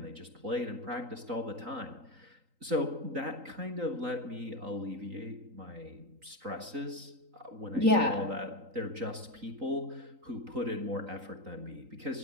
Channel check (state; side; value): late; left; 3.8 ms